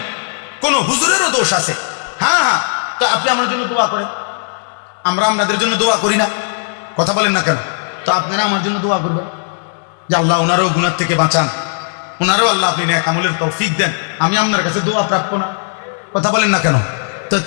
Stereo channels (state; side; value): silent; right; digital silence